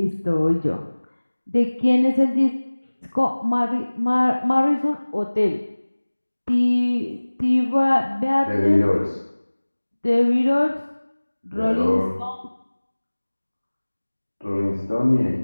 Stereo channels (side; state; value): both; inverted; correlation -1.00